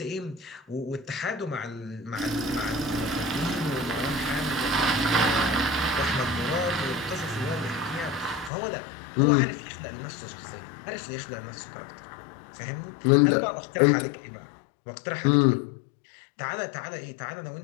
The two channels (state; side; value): drops out; right; at 8.5 s